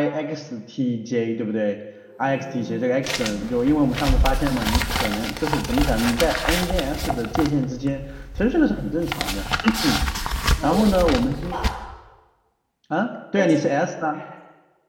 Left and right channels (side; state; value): both; identical; correlation 1.00